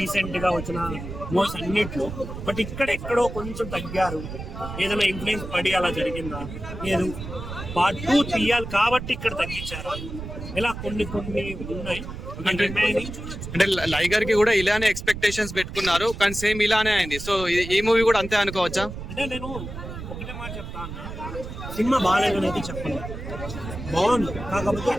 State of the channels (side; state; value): right; noise; rumble, 9 dB below the sound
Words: గా వచ్చిన మూవీస్ అన్నిట్లో. బట్ ఇక్కడ ఎక్కడో కొంచెం తగ్గారు. ఏదైనా ఇన్ఫ్లుయెన్స్ పడి అలా జరిగిందా, లేదు పార్ట్ 2 తీయాలి కాబట్టి ఇక్కడ తగ్గించారు, ఇలా కొన్ని ఉన్నాయి. అంటే లైగర్ కి కూడా ఇలానే ఎక్స్పెక్టేషన్స్ పెట్టుకున్నారు కానీ సేమ్ ఇలానే అయింది. సో ఈ మూవీ కూడా అంతే అనుకోవచ్చా? అంటే నేను ఒకటే మాట చెప్తాను, సినిమా బాగాలేదని అయితే చెప్పను, బాగుంది. కాకపోతే